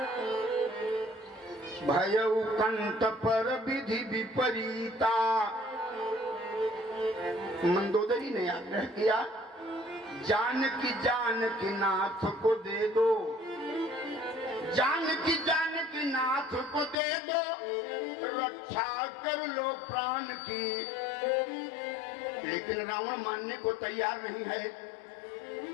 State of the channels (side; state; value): right; drops out; at 16.9 s